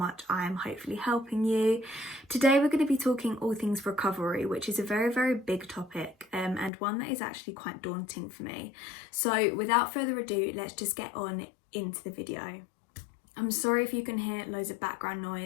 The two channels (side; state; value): right; drops out; at 6.7 s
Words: I am hopefully helping you. Today we're going to be talking all things recovery, which is a very big topic and one that is actually quite daunting for me. So without further ado, let's just get on into the video. I'm sorry if you can hear loads of background